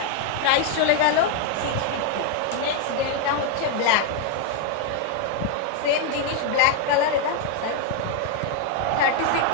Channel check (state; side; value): different; both; correlation 0.00